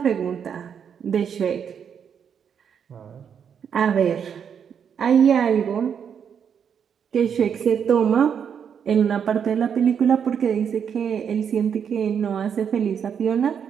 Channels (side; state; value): left; quieter; 7.6 dB